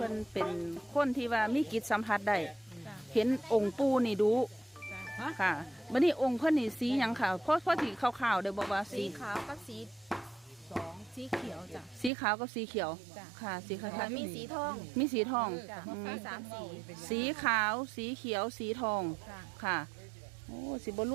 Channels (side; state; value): left; drops out; at 12.1 s